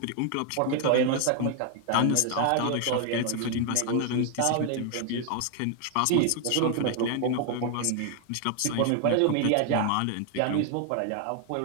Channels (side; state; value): both; different; correlation 0.00